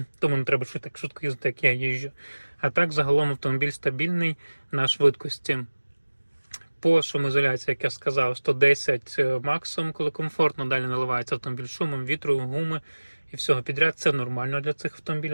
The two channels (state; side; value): inverted; both; correlation -1.00